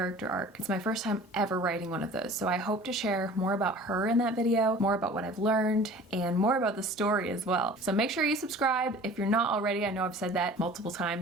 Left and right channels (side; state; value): both; normal; correlation 0.44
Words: arc. It's my first time ever writing one of those, so I hope to share more about her in that video, more about what I've learned, and more about the story as well. So make sure you subscribe if you're not already. I know I've said that multiple